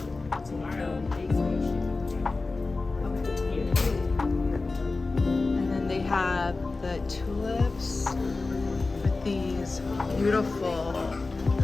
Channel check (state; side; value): quieter; right; 3.6 dB